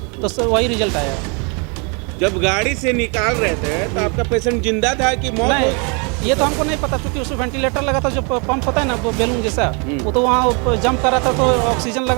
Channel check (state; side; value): quieter; left; 34.2 dB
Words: तो वही रिजल्ट आया। जब गाड़ी से निकाल रहे थे तो आपका पेशेंट जिंदा था कि मौत? नहीं, ये तो हमको नहीं पता, क्योंकि उसमें वेंटिलेटर लगा था, जो पंप होता है ना वो बैलून जैसा, वो तो वहाँ जंप कर रहा था, तो ऑक्सीजन